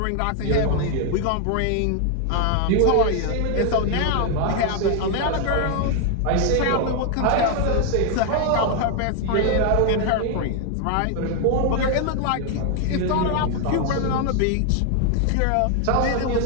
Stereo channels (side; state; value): both; different; correlation 0.00